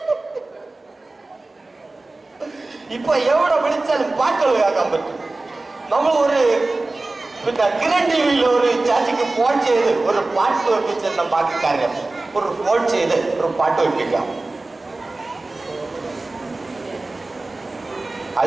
ഇപ്പൊ എവിടെ വിളിച്ചാലും പാട്ടുകൾ കേൾക്കാൻ പറ്റും. നമ്മൾ ഒരു പിന്നെ കിരൺ ടി വിയിൽ ഒരു ചാച്ചിക്ക് ഫോൺ ചെയ്ത് ഒരു പാട്ട് വെപ്പിച്ചെന്ന ബാക്കി കാര്യം ഒരു ഫോൺ ചെയ്ത് ഒരു പാട്ട് വെപ്പിക്കാം.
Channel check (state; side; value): quieter; left; 3.1 dB